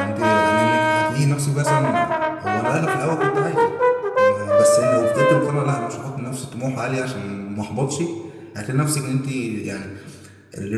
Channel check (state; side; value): identical; both; correlation 1.00